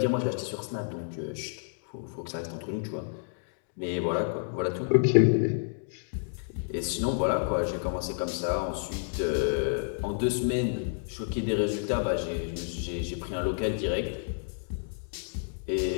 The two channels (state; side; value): silent; right; digital silence